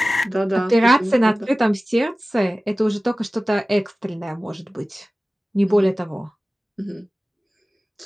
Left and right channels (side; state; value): both; normal; correlation 0.97